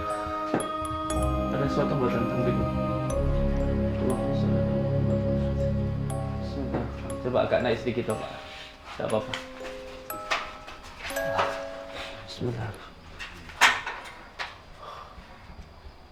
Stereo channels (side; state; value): both; identical; correlation 1.00